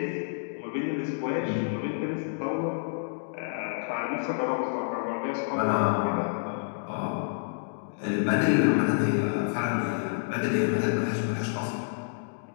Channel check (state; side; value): silent; right; digital silence